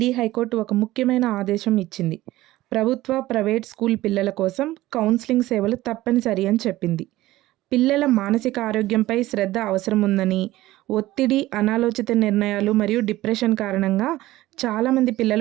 హైకోర్టు ఒక ముఖ్యమైన ఆదేశం ఇచ్చింది. ప్రభుత్వ, ప్రైవేట్ స్కూల్ పిల్లల కోసం కౌన్సిలింగ్ సేవలు తప్పనిసరి అని చెప్పింది. పిల్లల మానసిక ఆరోగ్యంపై శ్రద్ధ అవసరం ఉందని, ఒత్తిడి, అనాలోచిత నిర్ణయాలు మరియు డిప్రెషన్ కారణంగా చాలామంది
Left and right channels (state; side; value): quieter; left; 16.7 dB